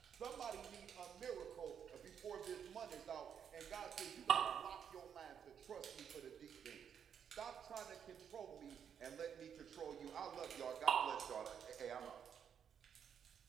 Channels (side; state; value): left; quieter; 8.0 dB